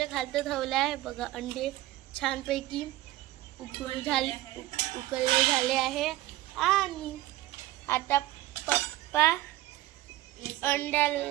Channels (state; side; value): quieter; left; 16.4 dB